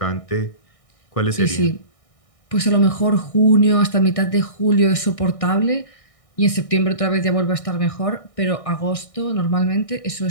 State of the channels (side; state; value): right; late; 1.6 ms